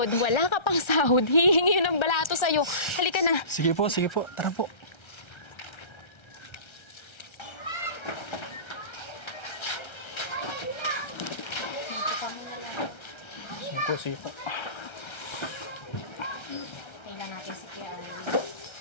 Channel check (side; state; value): right; late; 1.3 ms